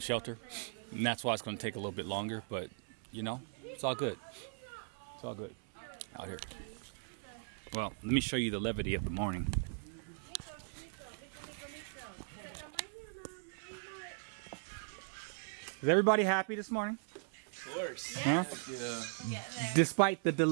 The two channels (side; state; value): left; silent; 52 dB below the other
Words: Shelter, and that's why it's going to take a little bit longer. But it's all good. It's all good out here. Well, let me show you the levity of the morning. Is everybody happy this morning? Of course. Huh? Yeah. Despite the